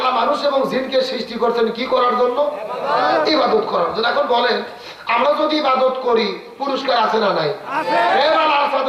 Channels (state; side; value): identical; both; correlation 1.00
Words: মানুষ এবং জিনকে সৃষ্টি করছেন কি করার জন্য? ইবাদত করার জন্য। এখন বলেন, আমরা যদি ইবাদত করি পুরস্কার আছে না নাই?